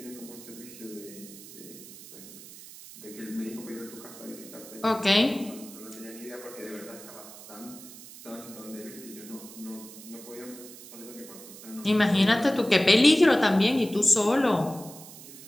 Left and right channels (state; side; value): noise; right; hiss, 16 dB below the sound